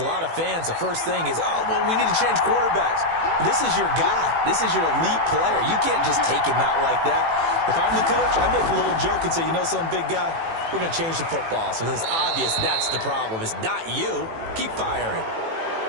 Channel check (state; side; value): late; left; 18 ms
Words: lot of fans, the first thing is, oh, well, we need to change quarterbacks. This is your guy. This is your elite player. You can't just take him out like that. If I'm the coach, I make a little joke and say, you know something, big guy? We're going to change the football. So it's obvious that's the problem. It's not you. Keep firing.